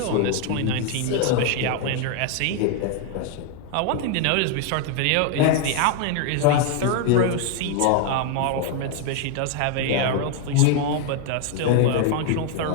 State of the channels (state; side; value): different; both; correlation 0.00